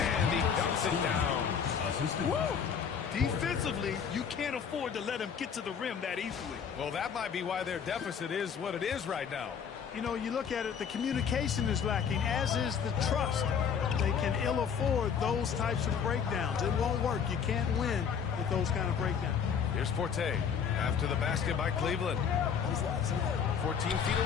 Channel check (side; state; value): right; quieter; 7.1 dB